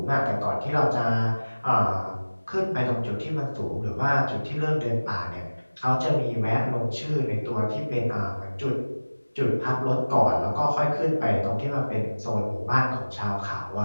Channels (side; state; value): both; inverted; correlation -1.00